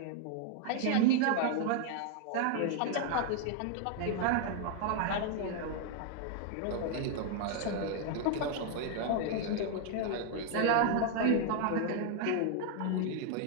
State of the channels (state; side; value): different; both; correlation 0.00